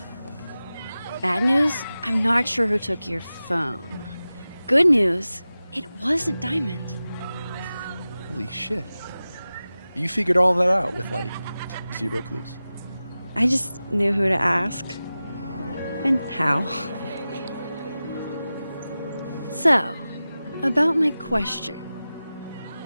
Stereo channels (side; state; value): both; inverted; correlation -0.95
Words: bad news, I'm not sure who took your phone. Good news, it wasn't Diamond. Holy shit. You figured all that out with, like, 0 clues. I just knew who to ask. And how. So, about my question.